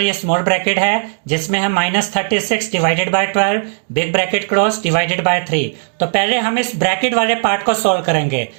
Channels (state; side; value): silent; left; digital silence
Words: ये स्मॉल ब्रैकेट है जिसमें है -36 divided by 12 big bracket close divided by 3। तो पहले हम इस ब्रैकेट वाले पार्ट को सॉल्व करेंगे।